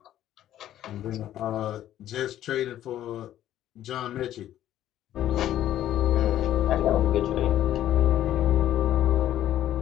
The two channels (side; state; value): right; quieter; 12.3 dB